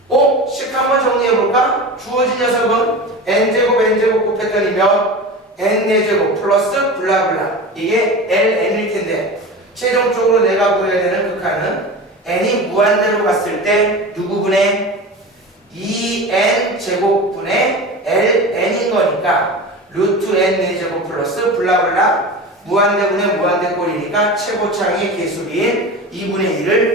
식 한번 정리해볼까? 주어진 녀석은 n제곱 곱했더니 몇? n4제곱 플러스 블라블라. 이게 ln일 텐데 최종적으로 내가 구해야 되는 극한은 n이 무한대로 갔을 때 누구분의 2n제곱분의 ln인 거니까 루트 n4제곱 플러스 블라블라 무한대분의 무한대꼴이니까 최고차항의 개수비인 2분의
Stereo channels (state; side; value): normal; both; correlation 0.30